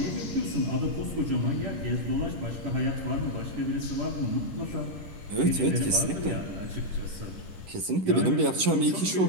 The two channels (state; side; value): late; left; 11 ms